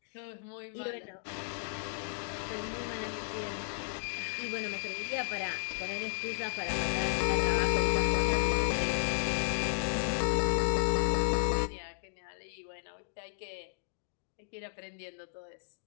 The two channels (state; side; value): silent; right; digital silence